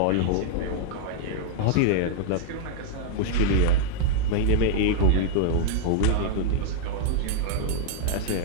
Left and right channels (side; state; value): both; different; correlation -0.01